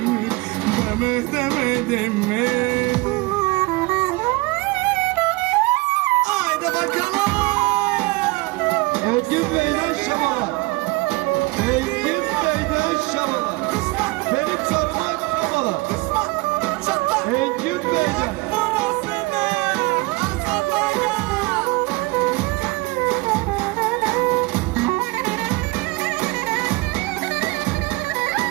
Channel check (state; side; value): quieter; left; 23.2 dB